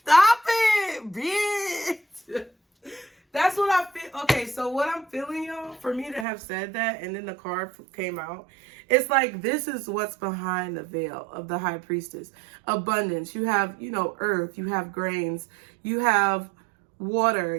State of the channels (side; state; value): left; drops out; at 6.2 s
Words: Stop it, bitch! That's what I feel. Okay, so what I'm feeling, y'all, for me to have said that and then the card came out, it's like this is what's behind the veil of the High Priestess. Abundance. You have, you know, earth. You have grains. You have water.